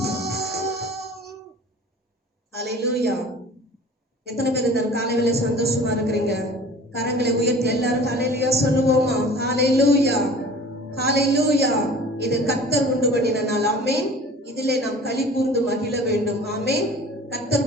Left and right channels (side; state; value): both; normal; correlation 0.44